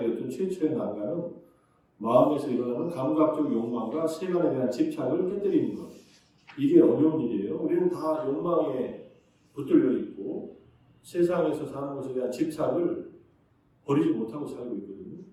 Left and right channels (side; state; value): both; identical; correlation 1.00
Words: 최초의 난관은 마음에서 일어나는 감각적 욕망과 세간에 대한 집착을 깨뜨리는 것. 이게 어려운 일이에요. 우리는 다 욕망에 붙들려 있고 세상에서 사는 것에 대한 집착을 버리지 못하고 살고 있거든요.